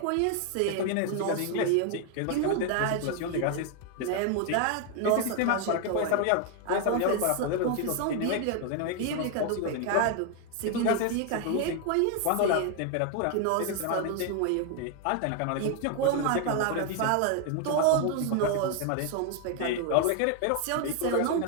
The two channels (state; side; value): different; both; correlation 0.00